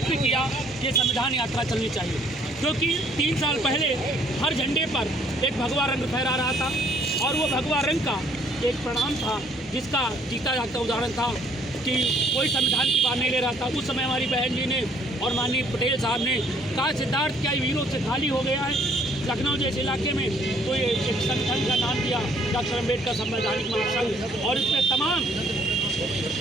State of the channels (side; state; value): both; normal; correlation 0.63